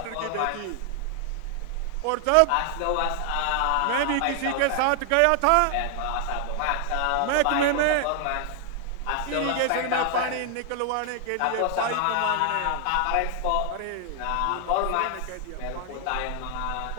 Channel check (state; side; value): different; both; correlation 0.00